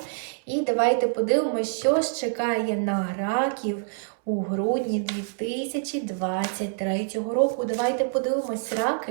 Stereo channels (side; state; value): left; silent; 61 dB below the other